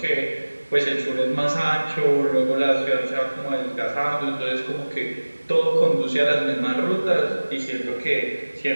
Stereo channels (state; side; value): inverted; both; correlation -1.00